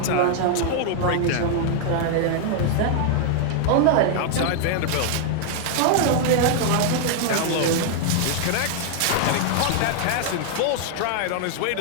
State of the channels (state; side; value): different; both; correlation 0.00